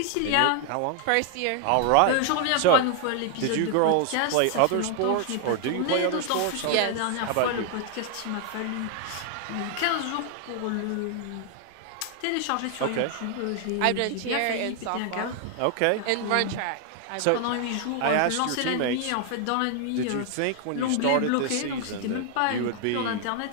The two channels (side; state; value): both; different; correlation 0.00